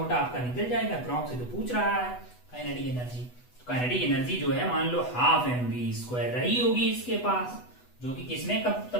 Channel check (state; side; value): late; right; 8.1 ms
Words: आपका निकल जाएगा, अप्रॉक्स से तो पूछ रहा है काइनेटिक एनर्जी, तो काइनेटिक एनर्जी जो है मान लो ½ mv² रही होगी इसके पास, जो कि किसमें कब